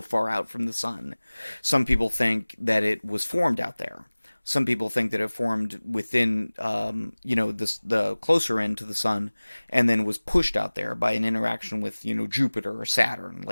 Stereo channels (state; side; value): inverted; both; correlation -1.00